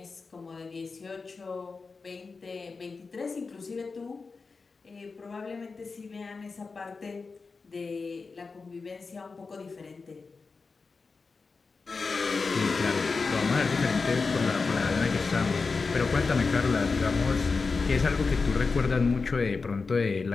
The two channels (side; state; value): right; quieter; 4.4 dB